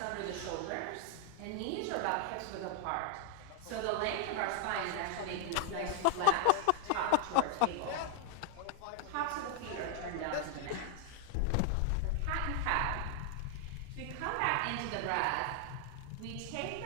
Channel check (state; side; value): different; both; correlation 0.00